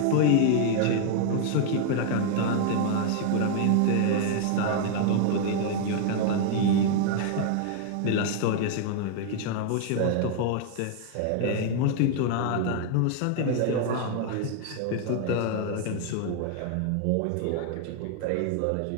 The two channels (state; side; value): different; both; correlation 0.00